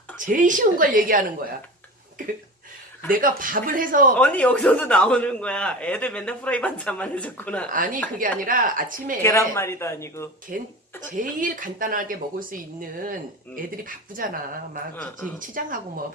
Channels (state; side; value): normal; both; correlation 0.31